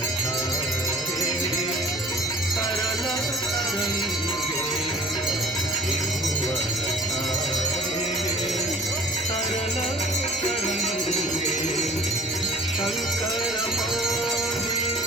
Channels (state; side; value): normal; both; correlation 0.50